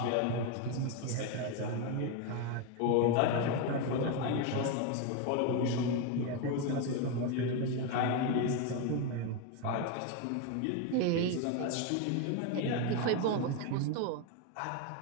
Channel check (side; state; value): both; different; correlation 0.02